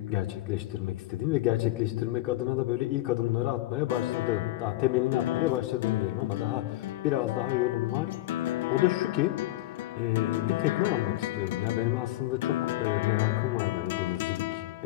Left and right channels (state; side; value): quieter; right; 16.5 dB